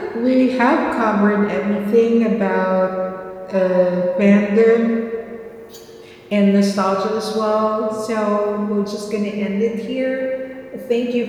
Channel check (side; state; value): both; identical; correlation 1.00